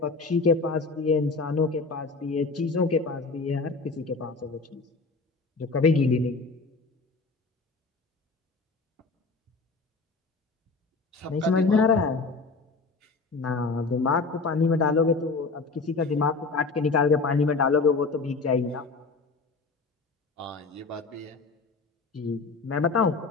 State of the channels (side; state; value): right; quieter; 4.1 dB